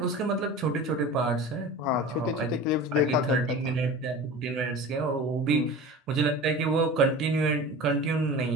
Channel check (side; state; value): both; normal; correlation 0.35